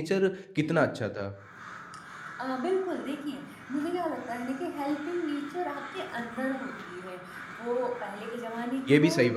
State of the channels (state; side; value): identical; both; correlation 1.00